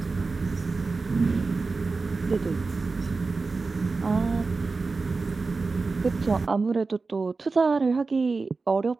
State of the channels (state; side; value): quieter; left; 4.0 dB